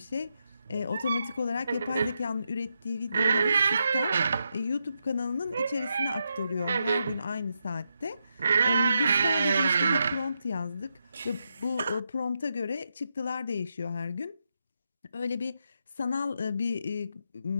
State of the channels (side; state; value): both; inverted; correlation -0.84